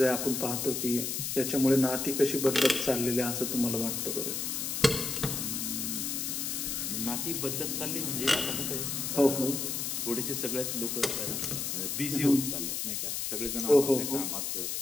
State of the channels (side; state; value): left; noise; hiss, 2 dB below the sound